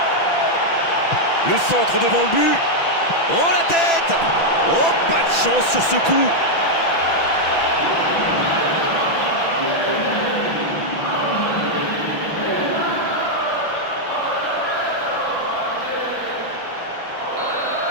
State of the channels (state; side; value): late; right; 6.0 ms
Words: Le centre devant le but. Oh la tête! Oh, pas de chance sur ce coup.